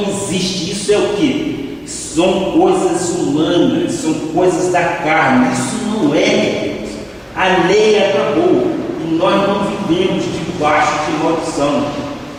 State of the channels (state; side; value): identical; both; correlation 1.00